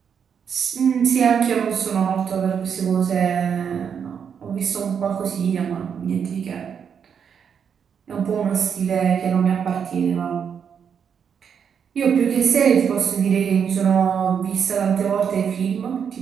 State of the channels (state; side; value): quieter; left; 7.3 dB